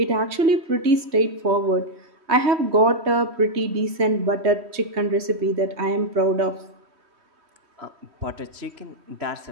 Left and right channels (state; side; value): late; left; 3.1 ms